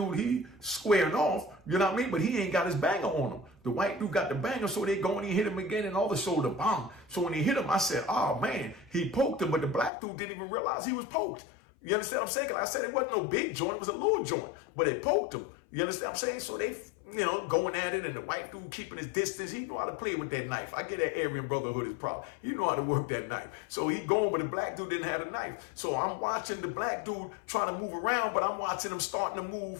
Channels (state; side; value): drops out; right; at 9.9 s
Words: he squaring off, you know what I mean? But he ain't got his banger on him. The white dude got the banger, so they go and he hit him again and all the shoulder, bang. So when he hit him, I said, oh man, he poked him, but the black dude didn't even realize he was poked. You understand what I'm saying? Like I said, it wasn't no big joint, it was a little joint, but it poked him. You understand what I'm saying? So they, you know, going at it, and the white dude keeping his distance. He know how to play with that knife. I get that Aryan Brotherhood is problem. You know how to work that knife. So he going, but the black dude didn't have a knife. So I'm watching the black dude trying to move around, but I'm watching him starting to